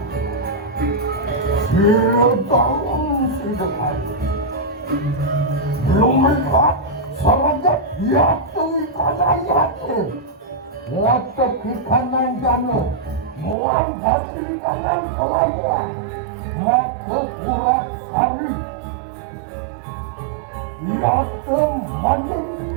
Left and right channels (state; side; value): drops out; left; at 13.6 s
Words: Sudah kayu. Belum melihat. Sahaja yatu ikana yatu Wata kikanan jano Muan basi ikanan kalaya Mata kurat sari Yatu